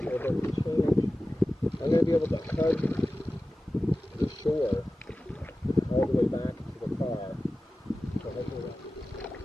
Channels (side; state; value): both; normal; correlation 0.95